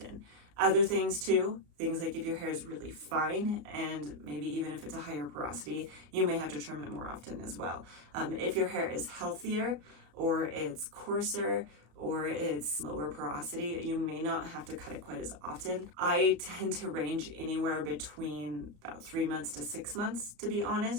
Other things too, things like if your hair is really fine, and maybe even if it's a higher porosity, you may have to trim it more often as well. If your hair is healthier, or it's coarser, or it's lower porosity, you may not have to cut it quite as often. I tend to range anywhere between about 3 months to 6 months, to be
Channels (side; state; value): left; late; 34 ms